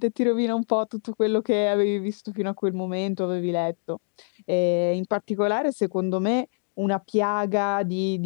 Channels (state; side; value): silent; right; digital silence